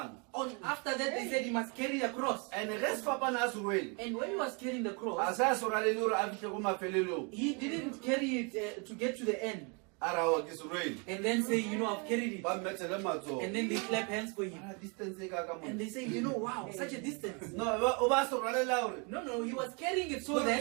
After that, they said he must carry the cross. and ge sefapano a se rwele And when he was carrying the a cross, se a se rwalele gore a fitlhe ko mafelelong he didn't carry it to get to the end a rawa ke se rwele and then say, I've carried it. ba mmethele matsogo And then they clap hands for him. a distance e ka ka And they say, wow, such a distance. no o ba se rwalela gore No, he was carrying it so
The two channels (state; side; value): quieter; left; 33.8 dB